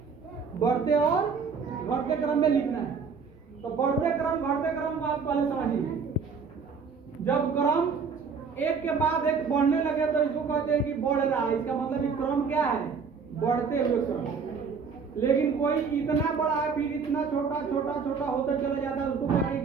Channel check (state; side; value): quieter; left; 5.6 dB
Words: बढ़ते और घटते क्रम में लिखना है। तो बढ़ते क्रम घटते क्रम को आप पहले समझिए। जब क्रम एक के बाद एक बढ़ने लगे तो इसको कहते हैं कि बढ़ रहा है। इसका मतलब कि क्रम क्या है? बढ़ते हुए क्रम। लेकिन कोई इतना बड़ा है फिर इतना छोटा छोटा छोटा होता चला जाता है, उसको कहते हैं